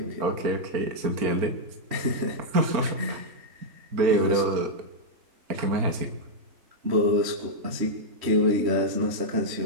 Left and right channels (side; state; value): left; late; 4.3 ms